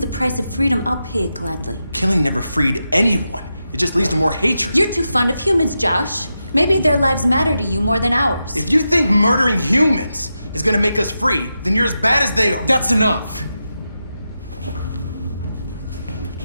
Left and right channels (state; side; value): inverted; both; correlation -0.89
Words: price of freedom, I'll pay it gladly. Killing never freed anyone. It just leads to more hatred. You're too fond of humans, Josh. Maybe their lives matter to you more than ours. If you think murdering humans is gonna make us free, then you're as bad as they are. That's enough!